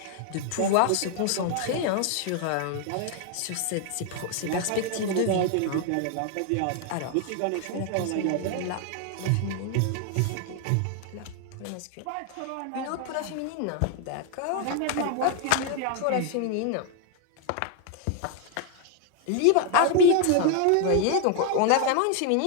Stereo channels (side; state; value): both; different; correlation 0.00